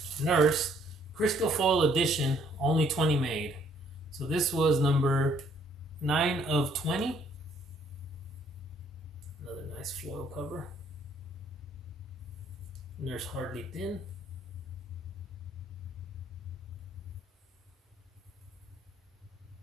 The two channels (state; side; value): normal; both; correlation 0.64